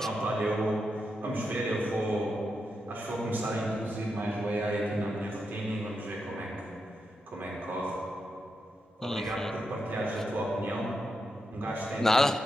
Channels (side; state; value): both; normal; correlation 0.85